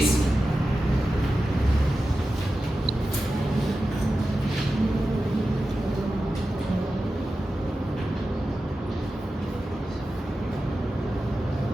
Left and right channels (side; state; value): both; normal; correlation 0.92